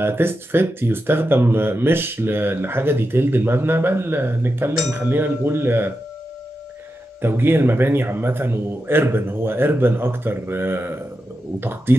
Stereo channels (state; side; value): normal; both; correlation 0.89